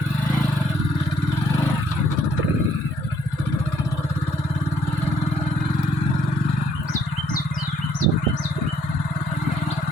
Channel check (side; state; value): both; normal; correlation 0.66